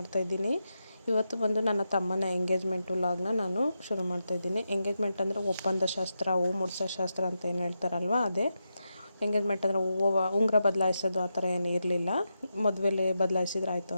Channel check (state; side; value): inverted; both; correlation -0.87